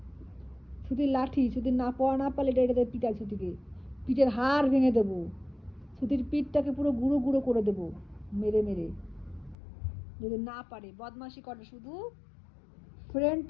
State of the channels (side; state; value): right; drops out; at 9.6 s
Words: ছুটির লাঠি, ছুটির না পড়া না পারলে এটা এটাতে পিটাই ছুটিকে। পিঠের হাড় ভেঙে দেবো। ছুটির পিঠটাকে পুরো গুঁড়ো গুঁড়ো করে দেবো মেরে মেরে, যদি না পারে। বদমাশি করে শুধু। ফ্রেন্ড